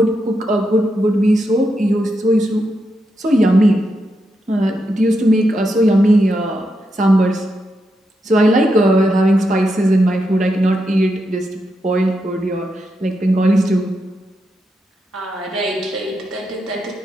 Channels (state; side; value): normal; both; correlation 0.84